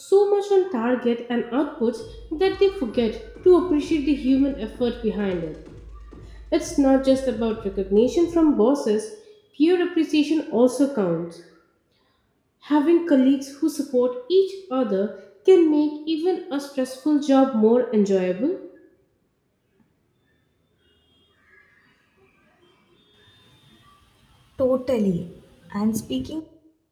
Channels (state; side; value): identical; both; correlation 1.00